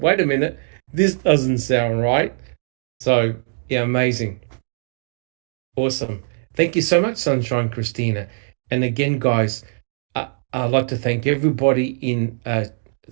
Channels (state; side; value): silent; left; digital silence